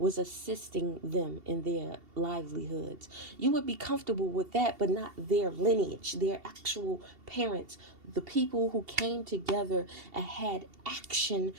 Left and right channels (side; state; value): left; late; 2.7 ms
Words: assisting them in their livelihoods. You would be comfortable with that, but not their lineage, their actual parents, the people who came together and had action